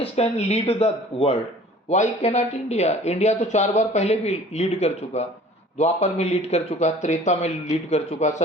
can lead the world, why can not India? India तो 4 बार पहले भी लीड कर चुका, द्वापर में लीड कर चुका, त्रेता में लीड कर चुका,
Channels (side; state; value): both; normal; correlation 0.48